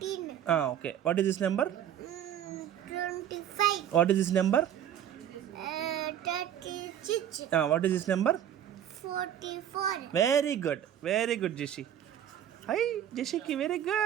Okay, what is this number? 25. What is this number? 36. What is this number? 44. Very good Jeshi. Hi జెషికి వెరీ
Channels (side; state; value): left; quieter; 10.3 dB